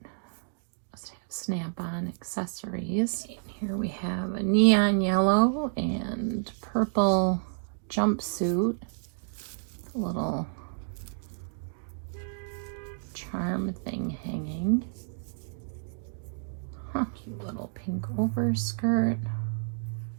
Snap-on accessories. And here we have a neon yellow and purple jumpsuit. Little charm thing hanging. Cute little pink overskirt.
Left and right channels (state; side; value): silent; left; digital silence